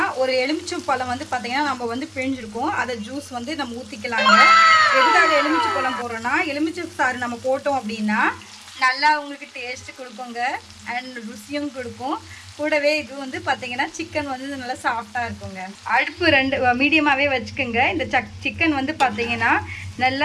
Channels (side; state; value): both; identical; correlation 1.00